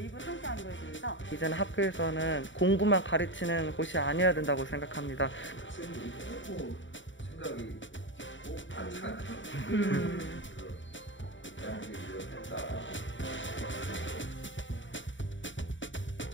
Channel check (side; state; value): right; late; 0.55 ms